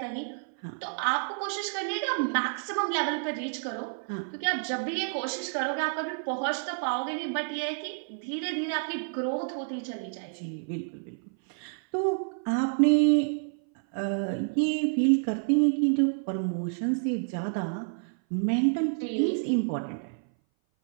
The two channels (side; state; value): left; silent; 57 dB below the other